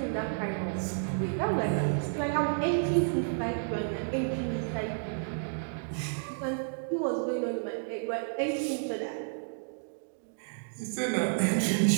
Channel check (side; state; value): left; silent; digital silence